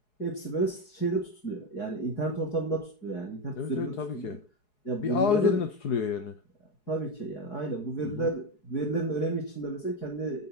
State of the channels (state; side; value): late; right; 4.7 ms